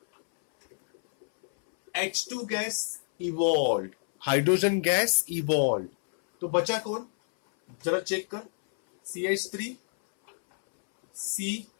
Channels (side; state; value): right; silent; 59 dB below the other